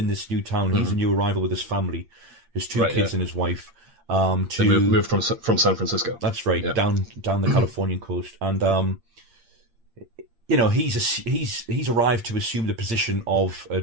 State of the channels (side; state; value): left; late; 8.7 ms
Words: this new town. He's a new arrival with his family, his 2 kids and his wife. They moved from San Francisco. That's right, down the Californian coast, and he's arrived to assume the position of